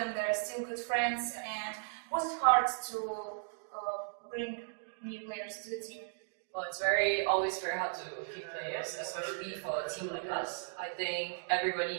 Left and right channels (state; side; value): silent; left; digital silence